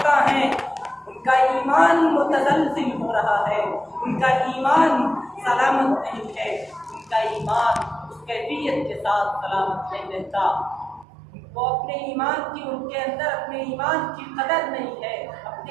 ہیں، ان کا ایمان متزلزل ہو رہا ہے، ان کا ایمان سلامت نہیں ہے، ان کا ایمان اس کیفیت کے ساتھ سلامت نہیں رہتا۔ وہ اپنے ایمان کی ان کے اندر اپنے ایمان کی قدر نہیں ہے،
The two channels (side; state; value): left; drops out; at 11.1 s